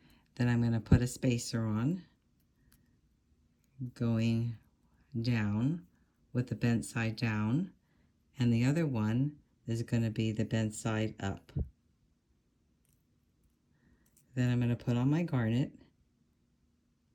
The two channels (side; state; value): both; identical; correlation 1.00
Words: Then I'm going to put a spacer on, going down with the bent side down, and the other one is going to be the bent side up. Then I'm going to put on my garnet.